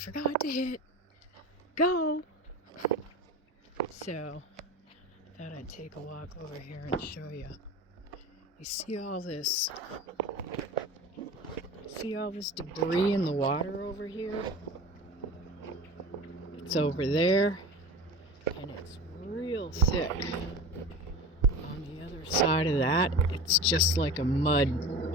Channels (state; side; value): normal; both; correlation 0.33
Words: to hit go. So, thought I'd take a walk over here and show you. You see all this debris in the water over here? It's over there, and it's real thick. On the other side of that, it's just like a mud